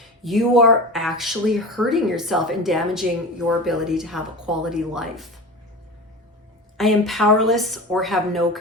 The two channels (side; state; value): both; normal; correlation 0.30